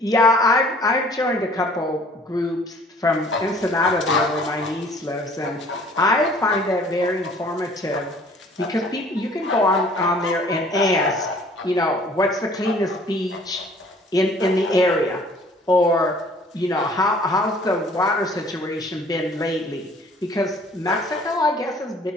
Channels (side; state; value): both; normal; correlation 0.54